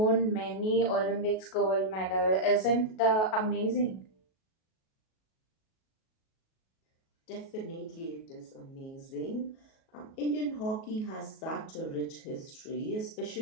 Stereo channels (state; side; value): late; right; 37 ms